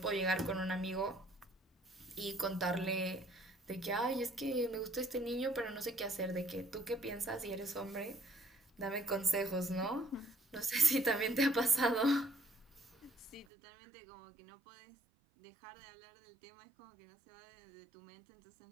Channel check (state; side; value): drops out; left; at 13.5 s